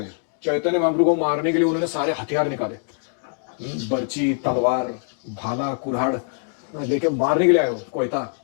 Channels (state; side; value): silent; right; 62 dB below the other